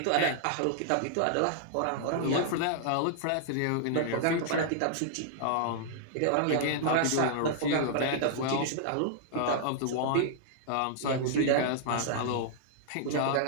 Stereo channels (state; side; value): different; both; correlation -0.01